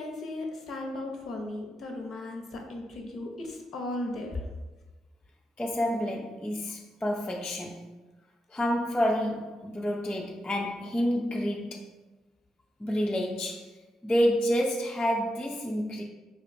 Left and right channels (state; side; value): normal; both; correlation 0.87